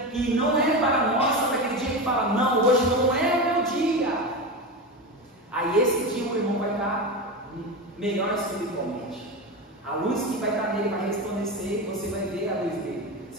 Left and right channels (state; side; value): normal; both; correlation 0.20